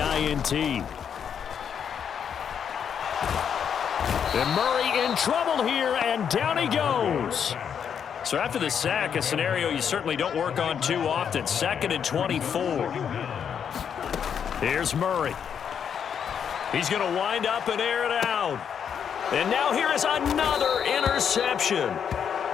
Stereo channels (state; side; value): quieter; right; 7.8 dB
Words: And Murray in trouble here, and down he goes. So after the sack, a scenario you certainly don't work on too often. 2nd and 24. Here's Murray. He's going to wind up and air it out. And now here is another interception.